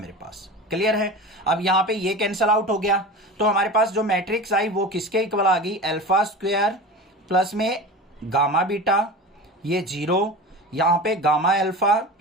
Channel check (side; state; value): both; normal; correlation 0.31